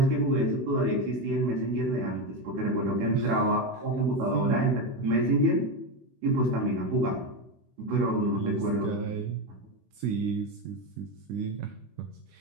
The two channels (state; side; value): late; left; 16 ms